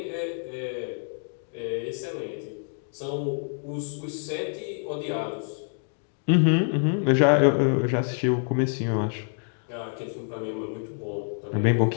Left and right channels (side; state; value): right; silent; 60 dB below the other